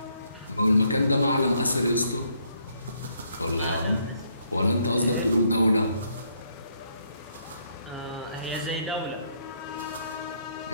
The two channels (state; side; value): inverted; both; correlation -0.71